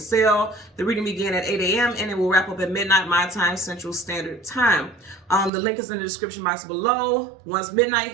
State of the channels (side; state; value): left; drops out; at 5.5 s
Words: The reading begins at 8 a.m. and it will wrap up at midnight my time, Central Standard Time. The link is in the description box below. Once midnight